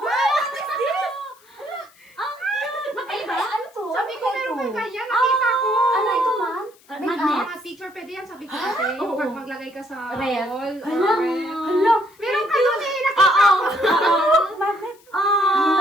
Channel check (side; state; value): left; noise; hiss, 29 dB below the sound